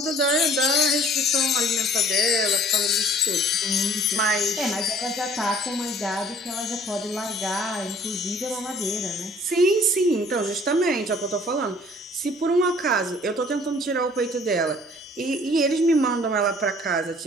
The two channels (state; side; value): normal; both; correlation 0.54